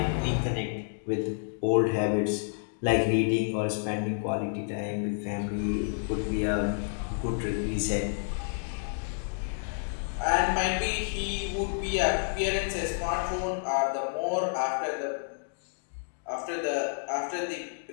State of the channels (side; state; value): right; silent; digital silence